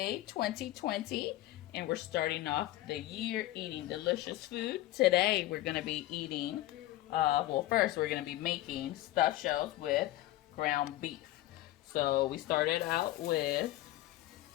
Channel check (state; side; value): quieter; right; 16.0 dB